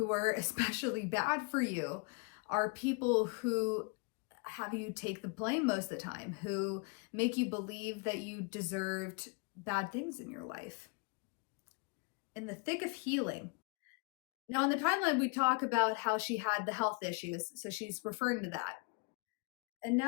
are especially bad for you, are people who have you take the blame most of the time, who make you believe that you deserved bad things in your life. in the thick of healing. Now, in the timeline, we talk about how she had the health issues, so she's referring to that. And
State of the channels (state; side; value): quieter; right; 30.4 dB